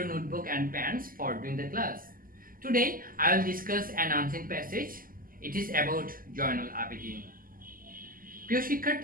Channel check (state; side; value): late; left; 0.41 ms